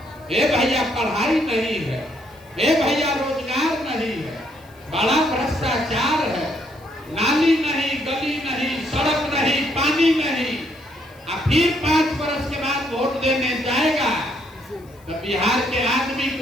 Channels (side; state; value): left; noise; hiss, 29 dB below the sound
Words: हे भैया पढ़ाई नहीं है, हे भैया रोजगार नहीं है, बड़ा भ्रष्टाचार है, नाली नहीं, गली नहीं, सड़क नहीं, पानी नहीं। अब फिर 5 बरस के बाद वोट देने जाएगा तो बिहार के आदमी